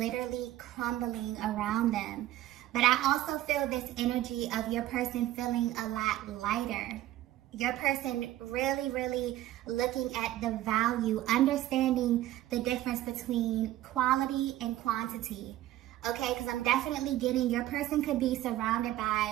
crumbling around them. But I also feel this energy of your person feeling a lot lighter. Your person really, really looking at the value, understanding the difference between quality and quantity. Okay, because I'm definitely getting your person could be surrounded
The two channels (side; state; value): left; quieter; 14.5 dB